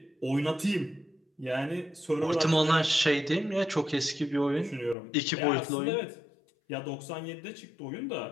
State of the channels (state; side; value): drops out; right; at 5.0 s